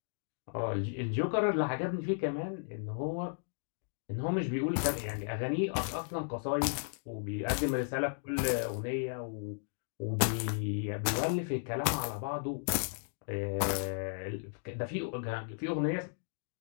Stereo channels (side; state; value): right; silent; digital silence